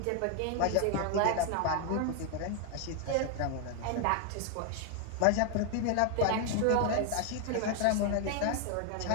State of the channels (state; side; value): different; both; correlation 0.00